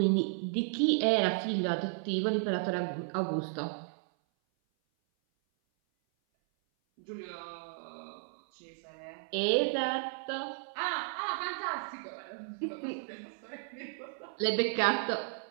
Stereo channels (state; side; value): silent; left; 55 dB below the other